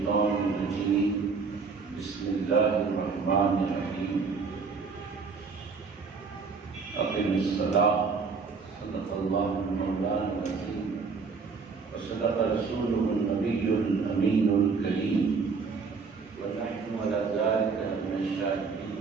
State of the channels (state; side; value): quieter; left; 4.9 dB